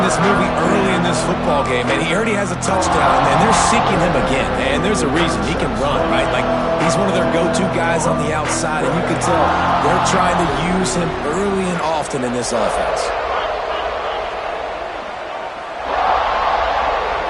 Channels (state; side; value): identical; both; correlation 1.00